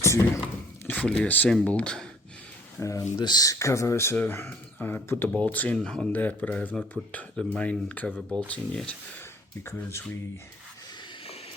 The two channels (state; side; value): normal; both; correlation 0.55